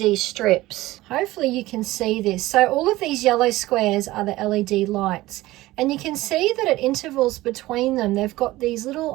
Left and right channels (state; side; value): quieter; left; 17.8 dB